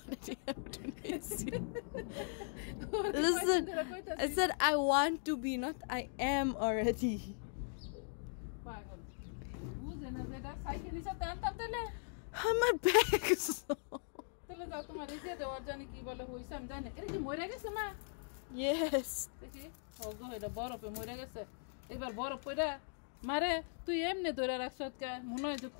Listen, I said I want to be, not I am already. পাগল বুঝে না যেটা সাইকেল নিচে টানতাম তাহলে আমার ব্যাগ তাহলে যাও তোমার এই যে দেওয়ার জানি কি বলে হইছে আমি জানি না এটা কি মরে গেছে মা Yes. দেখি ওগো এটা বরফে মরে গেছে এবার বরফ পড়া মারে তুই এমনি ধরে রাখছ কে মনে হয় যে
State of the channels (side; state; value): right; silent; digital silence